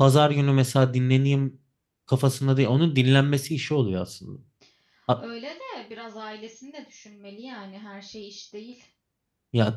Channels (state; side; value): identical; both; correlation 1.00